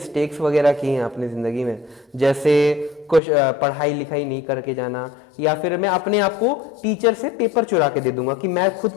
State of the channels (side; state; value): right; drops out; at 3.2 s